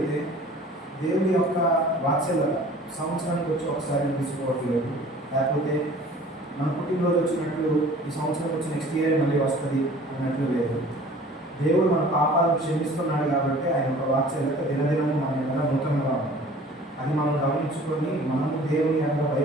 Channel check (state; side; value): normal; both; correlation 0.48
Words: దేవుని యొక్క వాత్సల్యత సంవత్సరానికి వచ్చి ఒకసారి తీసుకోవట్లేదు, లేకపోతే మన పుట్టినరోజు వచ్చినట్లు ఈ సంవత్సరం వచ్చి నెక్స్ట్ ఇయర్ మళ్ళీ వస్తుంది అన్నట్లు లేదు. దేవుడు మన పాపాలను క్షమిస్తున్నాడు కాబట్టి ఆయన యొక్క వాత్సల్యత దినదినము మన ఎలా నూతనంగా ఉంటుంది. అది మనం గమనించుకొని మనము దేవుని యొక్క